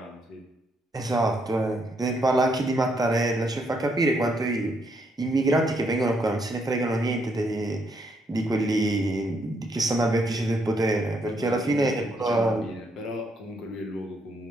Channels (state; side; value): normal; both; correlation 0.75